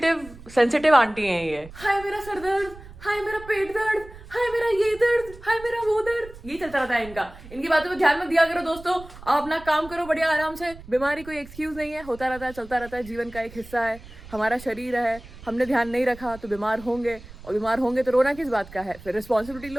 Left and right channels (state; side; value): noise; right; rumble, 18 dB below the sound